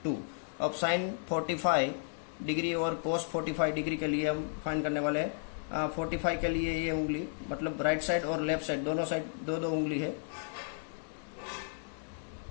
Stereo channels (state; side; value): silent; right; digital silence